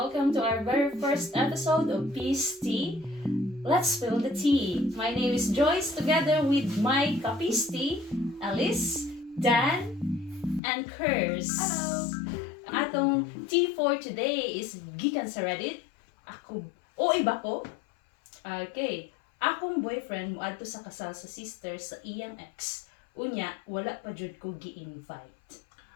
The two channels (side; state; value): right; drops out; at 10.6 s